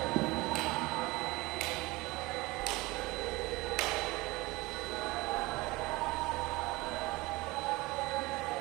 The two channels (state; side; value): quieter; left; 21.7 dB